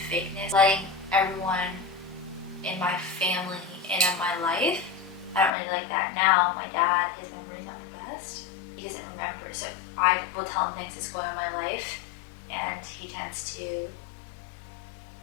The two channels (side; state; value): right; drops out; at 5.5 s